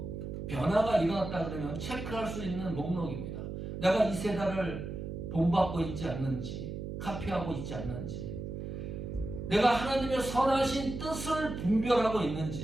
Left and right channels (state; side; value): noise; right; hum, 6 dB below the sound